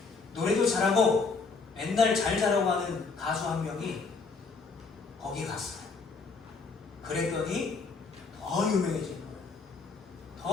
노래도 잘하고 맨날 잘 자라고 하는 가수 한 명이 거기 갔어요. 그랬더니 더 유명해진 거예요.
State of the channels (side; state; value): right; quieter; 4.5 dB